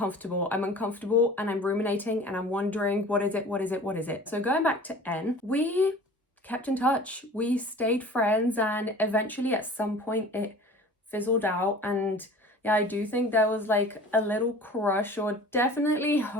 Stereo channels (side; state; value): both; normal; correlation 0.43